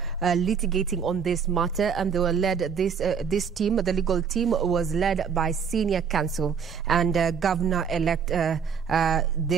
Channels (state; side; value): quieter; left; 6.7 dB